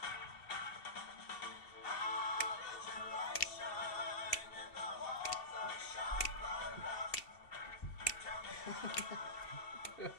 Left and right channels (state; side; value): late; right; 2.7 ms